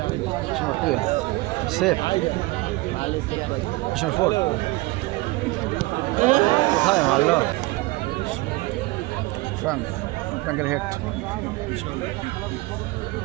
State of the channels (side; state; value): left; quieter; 21.8 dB